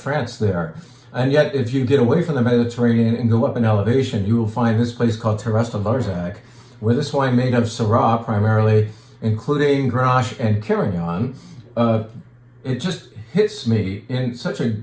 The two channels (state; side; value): identical; both; correlation 1.00